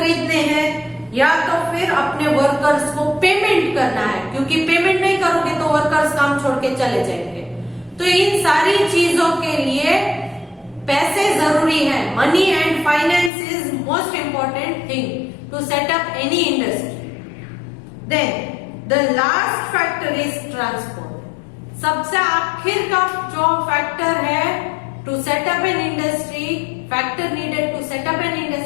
हैं, या तो फिर अपने वर्कर्स को पेमेंट करना है, क्योंकि पेमेंट नहीं करोगे तो वर्कर्स काम छोड़ के चले जाएंगे। तो इन सारी चीजों के लिए पैसे जरूरी है। Money and finance is most important thing to set up any industry. Then the last factor is transport. सबसे आखिर का जो फैक्टर है to set up an industry, factor needed to set up an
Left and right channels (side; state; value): right; drops out; at 13.3 s